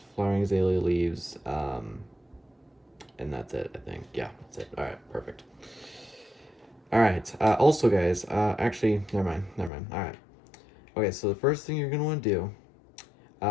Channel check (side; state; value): right; drops out; at 9.7 s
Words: flowering azalea leaves, and that's it, I think. Yeah, that's it. All right, perfect. All right, also guys, actually, never mind. All right. Okay, so the first thing you're gonna want to do,